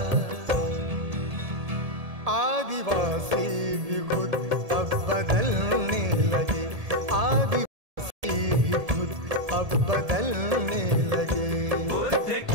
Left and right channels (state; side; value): late; left; 1.7 ms